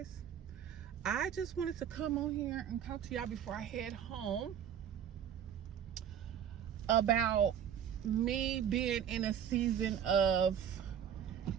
I just wanted to come on here and talk to y'all before I head home about me being in a season of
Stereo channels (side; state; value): left; quieter; 9.0 dB